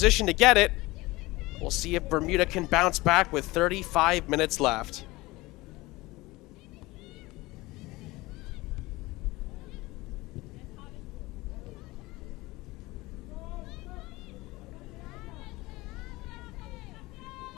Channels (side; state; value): right; quieter; 20.8 dB